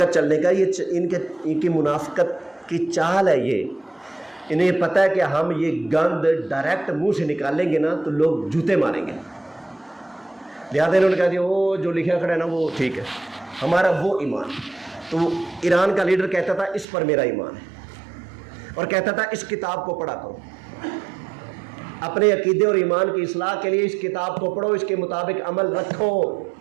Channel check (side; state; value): left; drops out; at 16.9 s